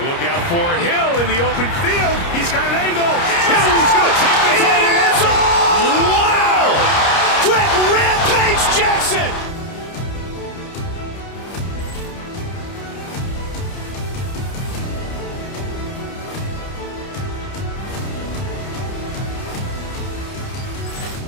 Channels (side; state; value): right; late; 30 ms